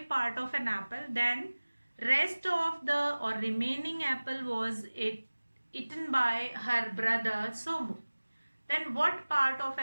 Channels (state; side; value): inverted; both; correlation -1.00